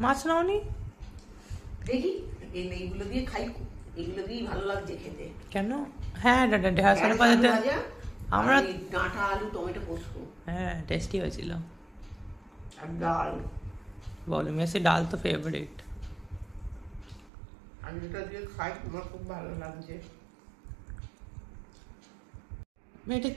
মাছ নাওনি? দেখি এইগুলো দিয়ে খাই, এগুলো দিয়েই ভালো লাগছে খেতে। কেন? হ্যাঁ, ঢেঁড়সের পাতাতে আমরা ডাঁটা আলু টমেটো পোস্ত, হ্যাঁ টেস্টি হয়েছিল। আর ডাল, বলো মেসি ডাল তো ফেভারিট। আমি যেটা দিয়ে খাই আমার খুব ভালো লাগছে। এটা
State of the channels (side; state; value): left; drops out; at 17.3 s